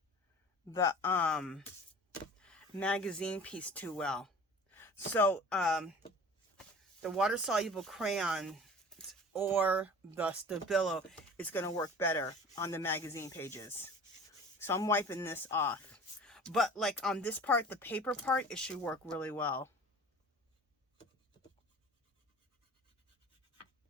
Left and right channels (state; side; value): normal; both; correlation 0.42